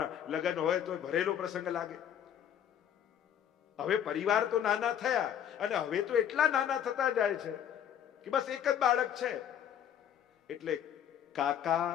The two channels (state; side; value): quieter; right; 9.6 dB